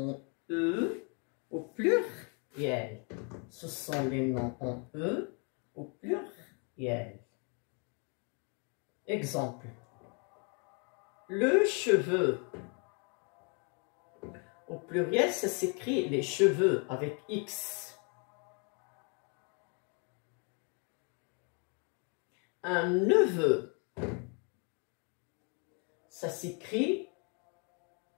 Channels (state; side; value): quieter; right; 36.5 dB